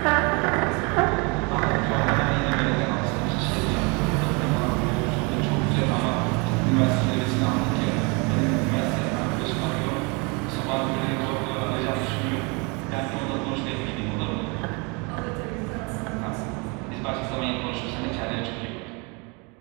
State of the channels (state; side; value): quieter; left; 30.5 dB